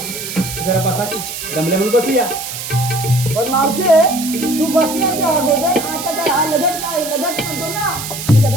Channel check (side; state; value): right; noise; hiss, 7 dB below the sound